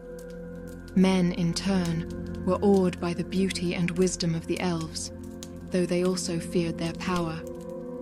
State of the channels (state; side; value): identical; both; correlation 1.00